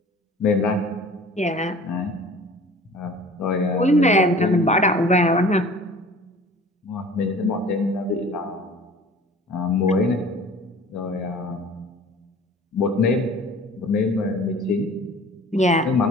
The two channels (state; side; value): normal; both; correlation 0.46